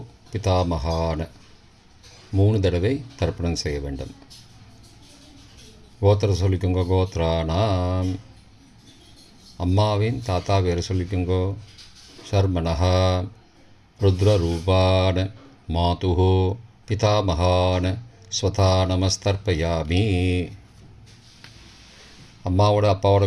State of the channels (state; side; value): identical; both; correlation 1.00